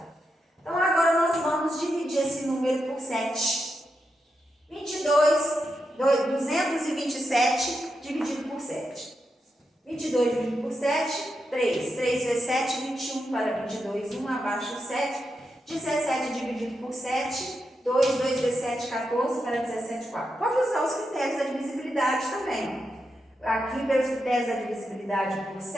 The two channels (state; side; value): normal; both; correlation 0.86